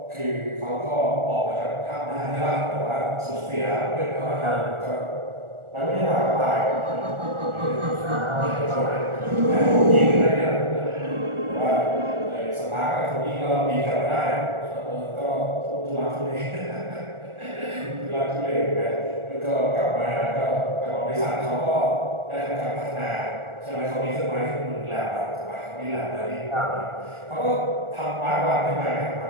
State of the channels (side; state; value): left; late; 1.4 ms